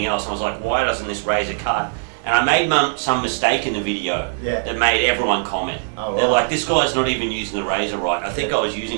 else. And I was like, why doesn't this razor cut? And I made some mistake in the video that made everyone comment. Oh, They're like, this guy's not even using the razor right. I think I was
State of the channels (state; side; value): silent; left; digital silence